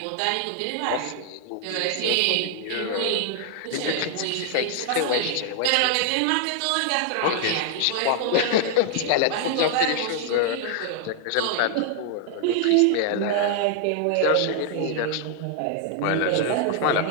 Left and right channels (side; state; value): both; different; correlation 0.00